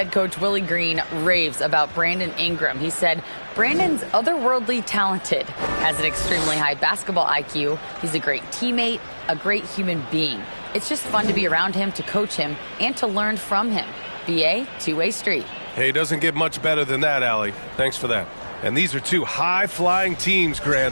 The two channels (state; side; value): inverted; both; correlation -1.00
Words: coach Willie Green raves about Brandon Ingram. He said, Brandon's otherworldly talented, has an extremely high basketball IQ. He's a great teammate, a great human being. It's just fun to be around him, to coach him, and to learn from him. BA, two-way street. Hey, doesn't get much better than that, Allie. Thanks for that. And these are two high-flying teams,